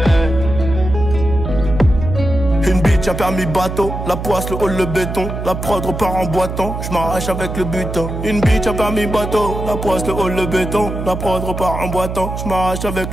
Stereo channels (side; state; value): right; noise; hum, 6 dB below the sound